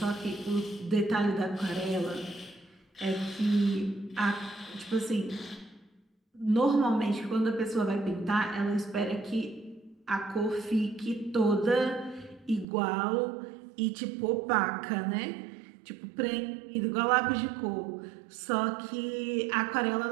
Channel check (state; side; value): drops out; left; at 12.7 s